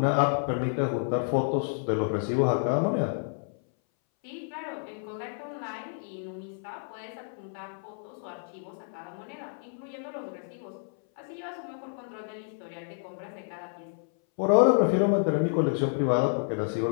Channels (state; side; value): silent; right; 58 dB below the other